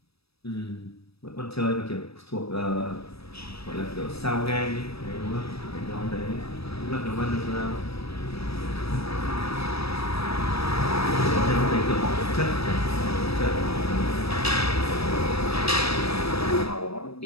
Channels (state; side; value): late; right; 0.78 ms